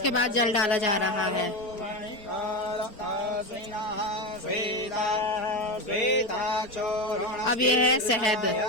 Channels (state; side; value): late; right; 4.4 ms